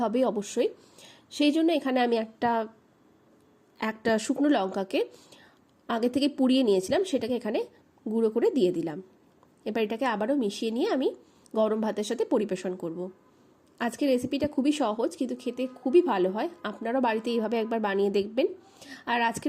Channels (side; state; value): both; identical; correlation 1.00